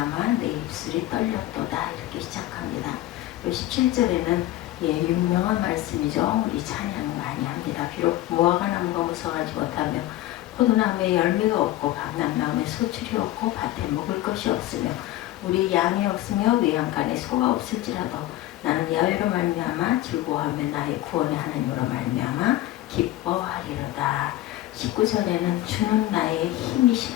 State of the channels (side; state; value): right; quieter; 15.2 dB